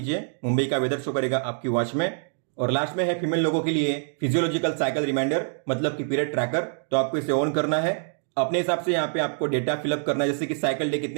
मुंबई का वेदर शो करेगा आपकी वॉच में। और लास्ट में है फीमेल लोगों के लिए फिजियोलॉजिकल साइकिल रिमाइंडर, मतलब कि पीरियड ट्रैकर। तो आपको इसे ऑन करना है। अपने हिसाब से यहाँ पे आपको डेटा फिलअप करना है, जैसे कि साइकिल डे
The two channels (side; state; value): left; silent; 57 dB below the other